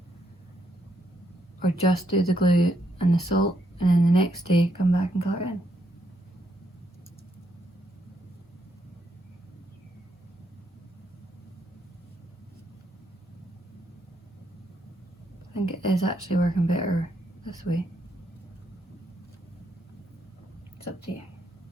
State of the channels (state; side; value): normal; both; correlation 0.76